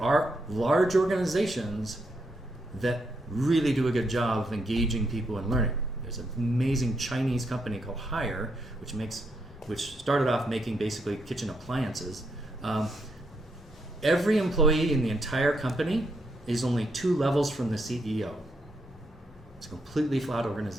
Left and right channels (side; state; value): both; normal; correlation 0.78